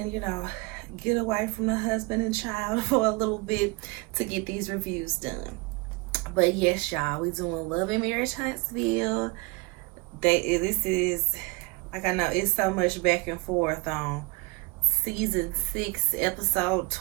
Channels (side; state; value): left; quieter; 25.8 dB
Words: get away from the husband and child for a little bit to get these reviews done. But yes, y'all, we doing Love and Marriage Huntsville. This is, like, I know it's so much back and forth on season 6, episode